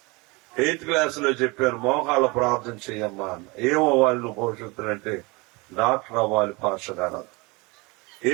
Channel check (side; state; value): left; quieter; 26.0 dB